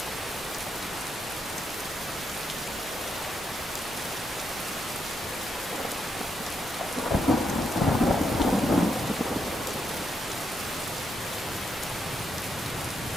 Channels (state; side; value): normal; both; correlation 0.80